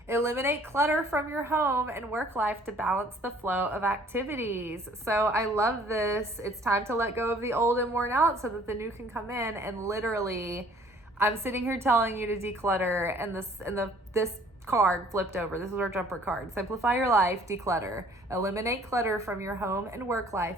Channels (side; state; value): both; normal; correlation 0.56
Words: Eliminate clutter from your home and work life to balance the flow of activities. So I love this. It's time to let go of the old and worn out so that the new can come in. And literally, I'm sitting here telling you to declutter, and this card flipped over. This is our jumper card. Simplify your life, declutter. Eliminate clutter from your home and work